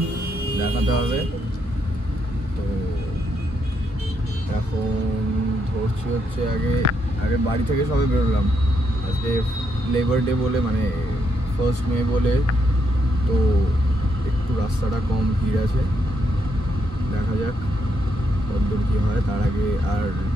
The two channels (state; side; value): normal; both; correlation 0.78